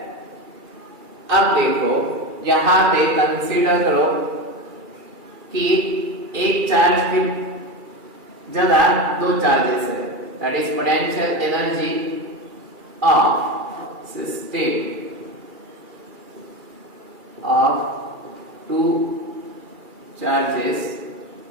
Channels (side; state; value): left; late; 2.4 ms